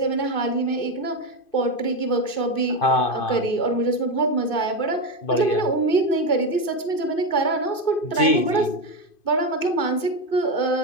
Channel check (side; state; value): right; late; 2.5 ms